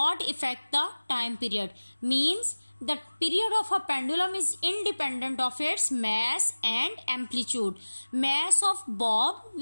affect the time period. Means the period of a pendulum is independent of its mass and amplitude. Mass of bob,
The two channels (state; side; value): inverted; both; correlation -1.00